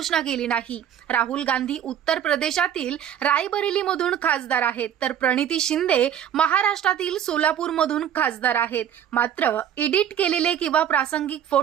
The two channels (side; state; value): left; quieter; 9.7 dB